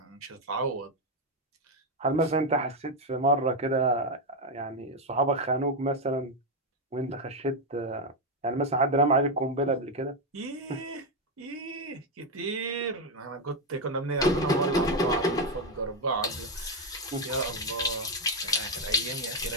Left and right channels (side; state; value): both; normal; correlation 0.06